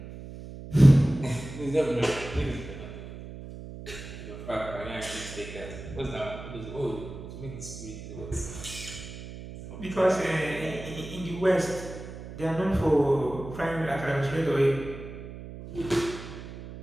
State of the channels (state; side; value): noise; right; hum, 12 dB below the sound